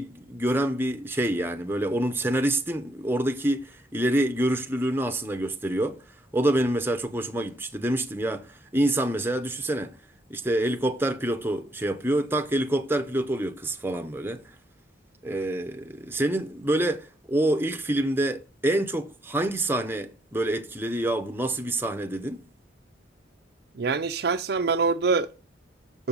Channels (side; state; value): both; normal; correlation 0.67